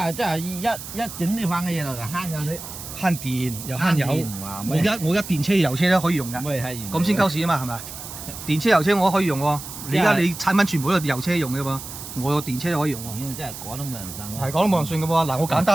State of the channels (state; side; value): noise; right; hiss, 11 dB below the sound